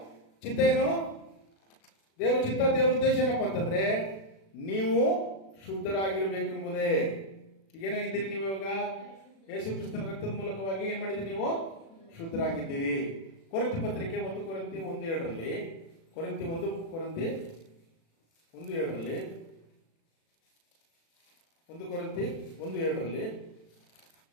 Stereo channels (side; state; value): right; late; 36 ms